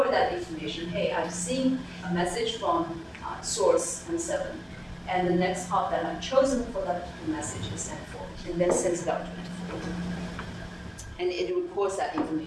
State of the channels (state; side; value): identical; both; correlation 1.00